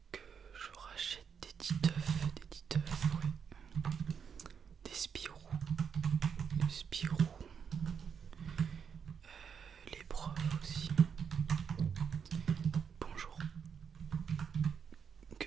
que je rachète des petits œufs, ouais. Des Spirou, les profs aussi. Bonjour, que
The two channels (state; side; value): quieter; left; 6.9 dB